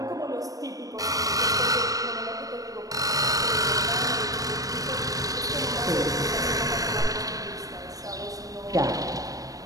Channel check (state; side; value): late; left; 0.17 ms